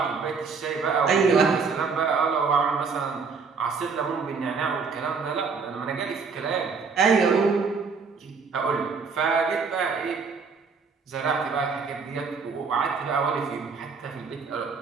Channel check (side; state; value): left; quieter; 5.1 dB